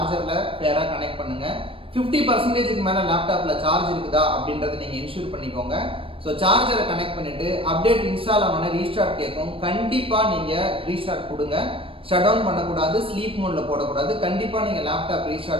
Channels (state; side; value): late; left; 0.26 ms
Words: பேரா கனெக்ட் பண்ணுங்க. 50% மேல லேப்டாப்ல சார்ஜ் இருக்குதா அப்படின்றத நீங்க இன்ஷூர் பண்ணிக்கோங்க. ஸோ சார்ஜரை கனெக்ட் பண்ணிட்டு அப்டேட் இன்ஸ்டால் ஆன ரீஸ்டார்ட் கேட்கும். கண்டிப்பா நீங்க ரீஸ்டார்ட் கொடுங்க. ஷட் டவுன் பண்ணக்கூடாது, ஸ்லீப் மோட்ல போடக்கூடாது. கண்டிப்பா நீங்க லேப்டாப்